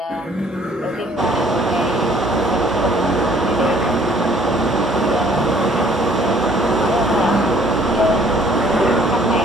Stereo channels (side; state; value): both; normal; correlation 0.59